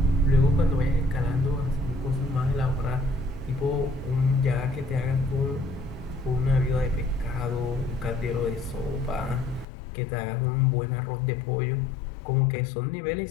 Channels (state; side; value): drops out; right; at 9.7 s